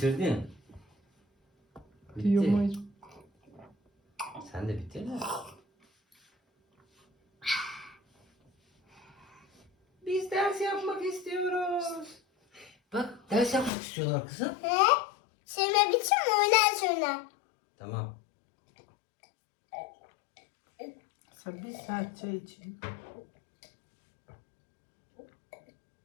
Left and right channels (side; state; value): right; drops out; at 13.7 s